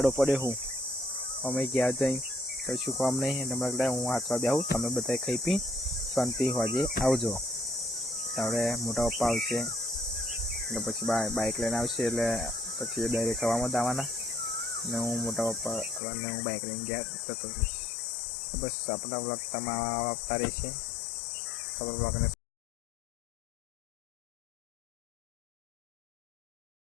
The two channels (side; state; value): right; drops out; at 16.0 s